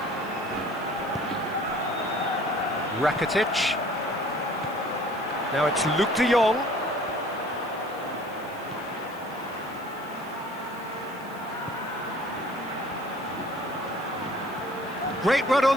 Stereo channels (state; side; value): noise; left; hiss, 23 dB below the sound